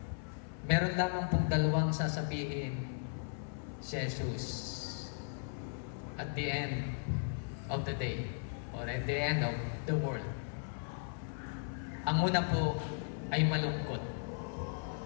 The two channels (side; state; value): right; silent; 53 dB below the other